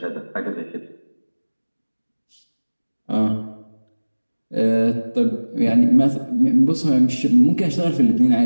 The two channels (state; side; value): inverted; both; correlation -1.00